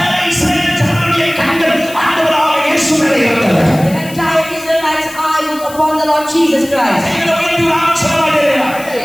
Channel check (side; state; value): left; noise; hiss, 16 dB below the sound